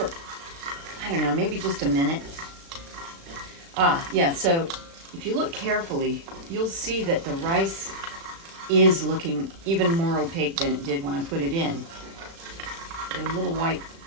I don't know, maybe just a minute. Yeah, so if you look carefully, you'll see that the rice is looking even more opaque than it did when I put it in. There are little white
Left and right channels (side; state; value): left; late; 36 ms